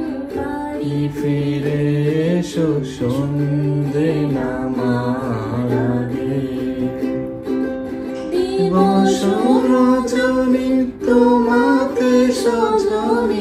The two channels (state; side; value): identical; both; correlation 1.00